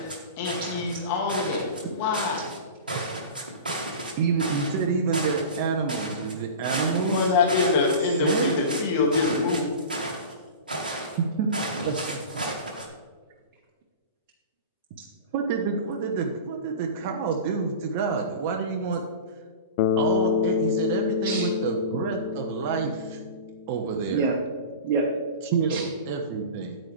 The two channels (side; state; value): both; inverted; correlation -0.32